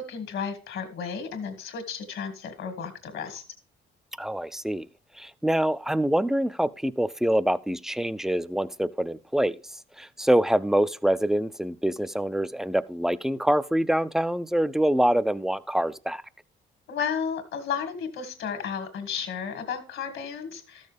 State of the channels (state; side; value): normal; both; correlation 0.89